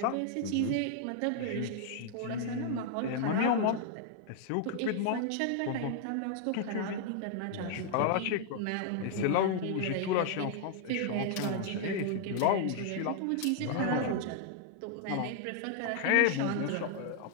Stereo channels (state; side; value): different; both; correlation 0.00